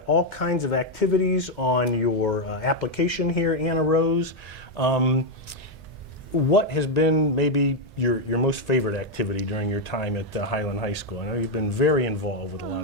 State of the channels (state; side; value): normal; both; correlation 0.02